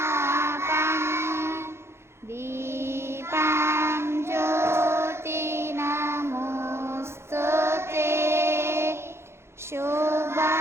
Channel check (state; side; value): late; left; 0.12 ms